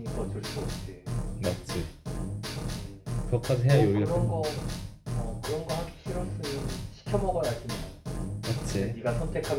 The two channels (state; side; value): identical; both; correlation 1.00